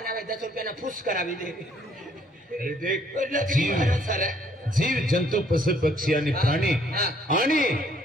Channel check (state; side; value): normal; both; correlation 0.64